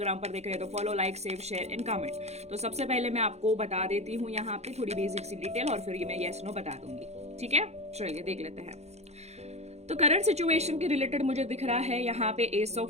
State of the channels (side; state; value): left; late; 0.31 ms